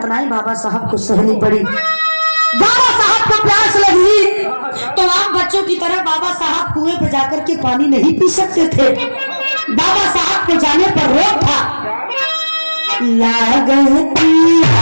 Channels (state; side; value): inverted; both; correlation -1.00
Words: बाबा साहब को सहनी पड़ी। बाबा साहब को प्यास लगी तो आम बच्चों की तरह बाबा साहब कुएं पे जाकर के पानी नहीं पी सकते थे, बाबा साहब के जाने पर रोक था।